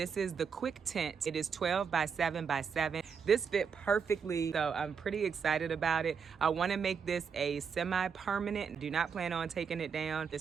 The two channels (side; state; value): left; quieter; 6.4 dB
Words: is the Quictent. It is 12 by 7 by 7. This fit perfectly, so I'm pretty excited about it. I want to make this a semi-permanent. Do not plan on taking it down.